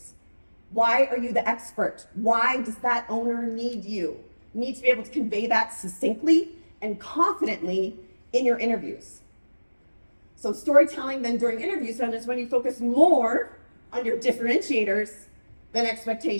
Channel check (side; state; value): both; inverted; correlation -1.00